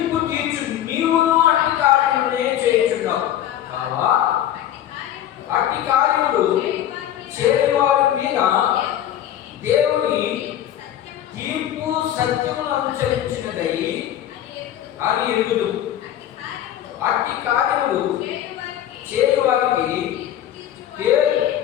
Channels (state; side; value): quieter; right; 11.5 dB